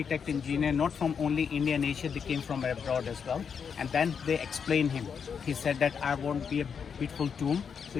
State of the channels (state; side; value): quieter; right; 6.7 dB